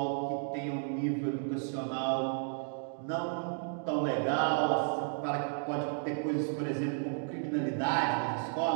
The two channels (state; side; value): silent; left; 56 dB below the other